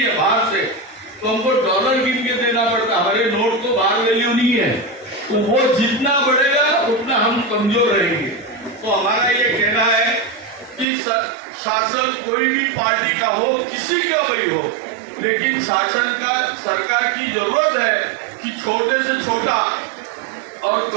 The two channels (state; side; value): drops out; left; at 10.9 s